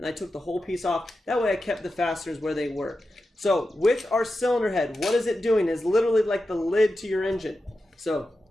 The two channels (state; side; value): normal; both; correlation 0.91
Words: I took the whole piece off. That way I kept the fasteners where they were. So with our cylinder head, what is it doing? It's literally like the lid to your engine. So